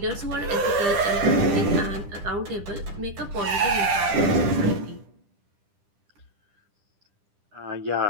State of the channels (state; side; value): late; left; 10 ms